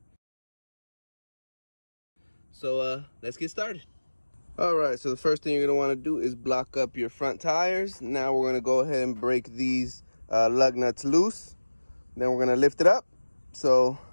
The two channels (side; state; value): both; inverted; correlation -1.00